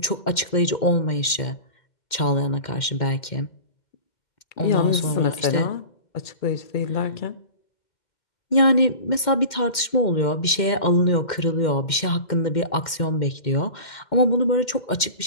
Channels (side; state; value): right; late; 2.1 ms